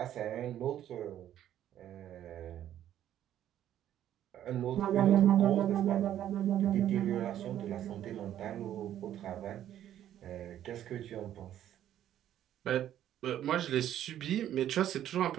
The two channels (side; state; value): left; quieter; 11.4 dB